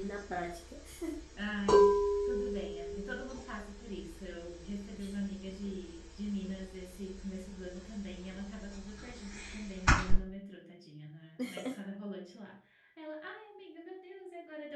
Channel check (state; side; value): identical; both; correlation 1.00